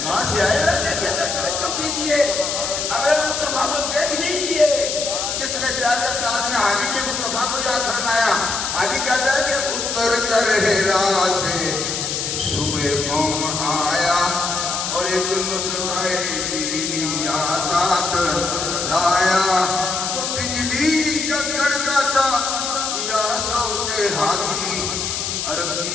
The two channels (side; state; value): left; noise; hiss, 2 dB below the sound